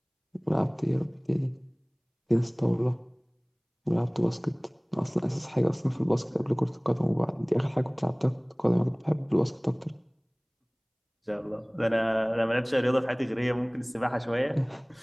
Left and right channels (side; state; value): both; identical; correlation 1.00